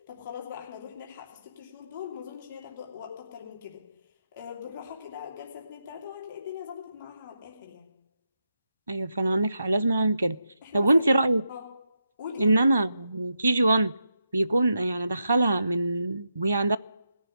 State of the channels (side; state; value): both; inverted; correlation -0.85